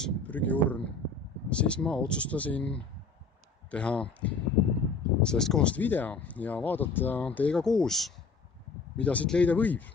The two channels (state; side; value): quieter; right; 4.2 dB